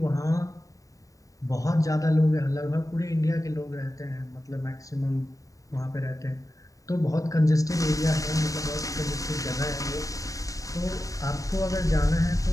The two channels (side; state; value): right; late; 0.16 ms